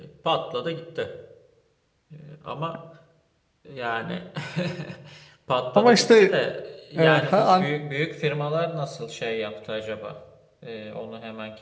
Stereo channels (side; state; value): both; identical; correlation 1.00